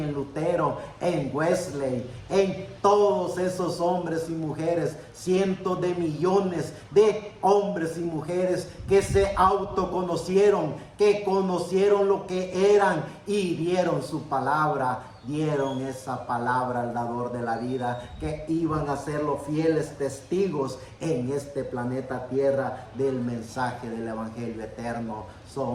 Lutero, en Wesley, en todos esos hombres y mujeres, cientos de millones de hombres y mujeres que se autoconocieron, que conocieron lo que eran y dieron su palabra, dieron esa palabra al dador de la vida, que iban a ser los fieles testigos en este planeta Tierra del mensaje del evangelio eterno.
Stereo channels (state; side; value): identical; both; correlation 1.00